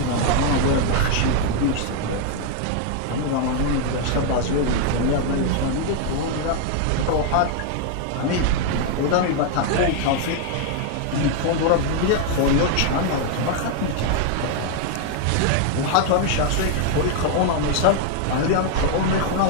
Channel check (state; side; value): different; both; correlation 0.00